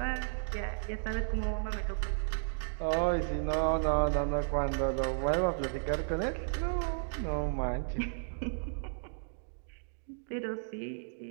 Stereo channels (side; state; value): left; silent; digital silence